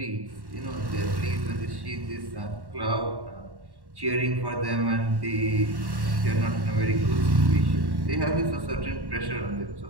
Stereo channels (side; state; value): left; late; 1.1 ms